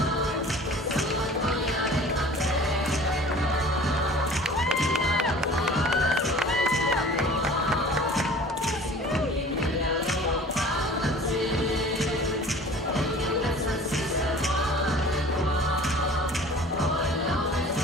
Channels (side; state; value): both; normal; correlation 0.45